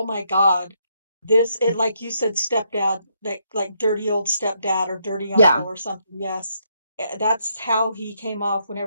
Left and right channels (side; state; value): both; inverted; correlation -0.76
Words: my God, this," it like you said, stepdad, like dirty old stepdad or dirty uncle Yeah. or something. Yes. That's how he came off